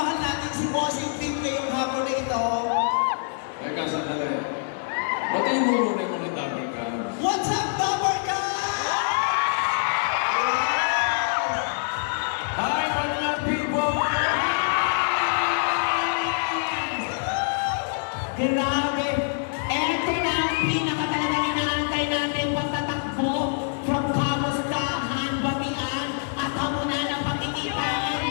natin si Bossing Pink ngayong hapon na ito. Teka, sandali. Batiin mo muna yung mga Talagas. What's up, Dabarka? Hi, mga people! Grabe! Eto na ang pinakatalagang inaantay natin pagtatakbo from kamustahan, batian, at hamunan ng pagkikita.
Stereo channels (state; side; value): silent; right; digital silence